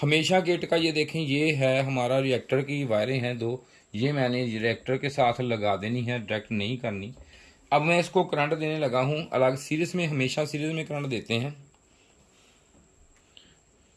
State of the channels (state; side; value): identical; both; correlation 1.00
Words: किट का ये देखें, ये है हमारा रिएक्टर की वायरें हैं दो, ये मैंने रिएक्टर के साथ लगा देनी है, डायरेक्ट नहीं करनी। अब मैं इसको करंट देने लगा हूँ अलग सीरीज में, हमेशा सीरीज में करंट देते हैं।